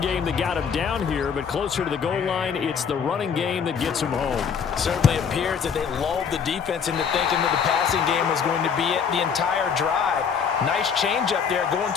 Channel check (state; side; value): quieter; right; 6.7 dB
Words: that got him down here, but closer to the goal line, it's the running game that gets him home. Certainly appears that they lulled the defense into thinking that the passing game was going to be it the entire drive. Nice change up there going